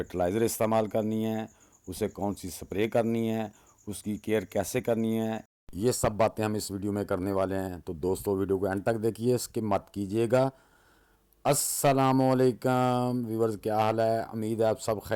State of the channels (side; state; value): both; identical; correlation 1.00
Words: इस्तेमाल करनी है, उसे कौन सी स्प्रे करनी है, उसकी केयर कैसे करनी है, ये सब बातें हम इस वीडियो में करने वाले हैं। तो दोस्तों, वीडियो को एंड तक देखिए, स्किप मत कीजिएगा। अस्सलामुअलैकुम व्यूवर्स, क्या हाल है? उम्मीद है आप सब